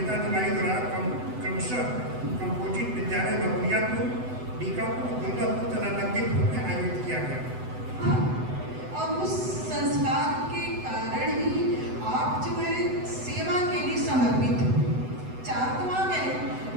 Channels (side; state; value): left; late; 7.9 ms